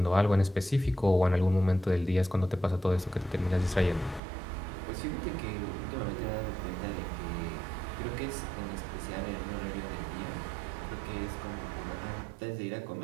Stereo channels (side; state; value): left; drops out; at 4.2 s